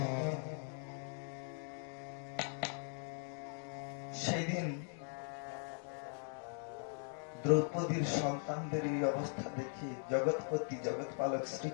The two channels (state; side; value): silent; right; 51 dB below the other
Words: সেই দিন দ্রৌপদীর সন্তানদের এই অবস্থা দেখে জগৎপতি জগৎপালক